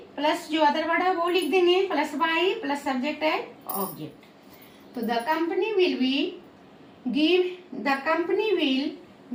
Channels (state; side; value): identical; both; correlation 1.00